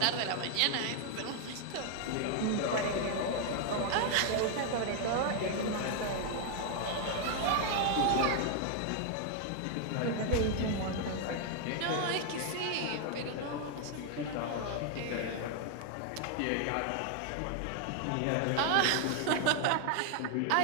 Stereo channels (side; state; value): both; different; correlation 0.00